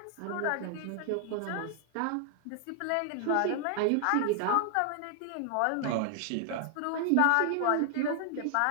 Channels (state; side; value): different; both; correlation 0.00